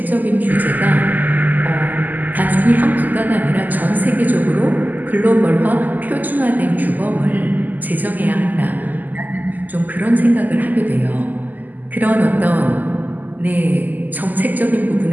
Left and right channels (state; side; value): late; left; 0.083 ms